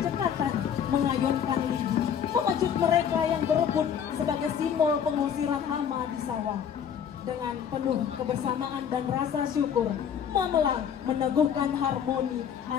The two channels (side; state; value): right; quieter; 8.2 dB